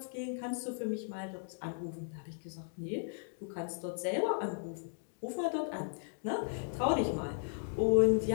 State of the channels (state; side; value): silent; right; digital silence